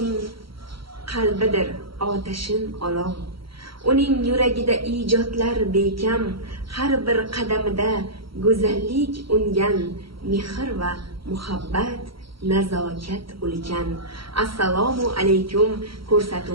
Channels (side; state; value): left; late; 0.74 ms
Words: qalbidir otashin olov. Uning yuragida ijodlar bekam, har bir qadamida go'zallik ungan, mehr va muhabbat, nazokat ulkan. Assalomu alaykum